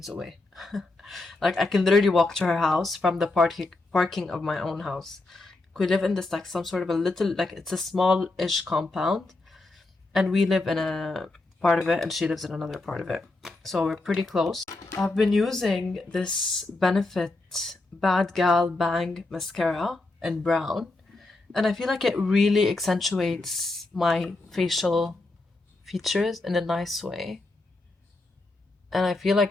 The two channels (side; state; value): right; quieter; 3.0 dB